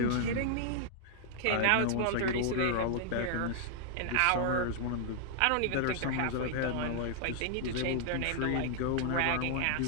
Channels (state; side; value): different; both; correlation 0.00